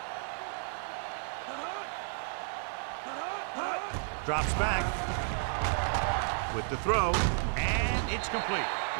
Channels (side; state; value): left; silent; 56 dB below the other